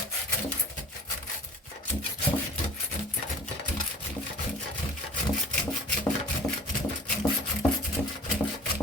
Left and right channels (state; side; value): normal; both; correlation 0.45